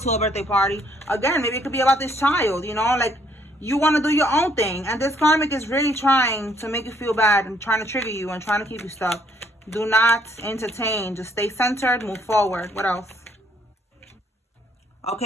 a birthday party. Again, maybe it could be about this child, you know, like you want to do your own thing. And this karmic is really trying to make you feel bad and trying to trigger you and trying to keep you stuck. Do not entertain. Just stay centered. Move forward. What else?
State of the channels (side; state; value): both; normal; correlation 0.67